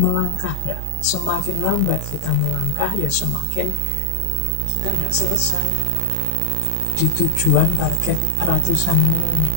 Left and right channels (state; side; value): different; both; correlation 0.00